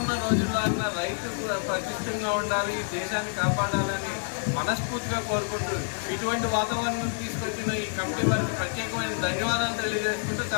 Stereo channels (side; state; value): right; silent; 60 dB below the other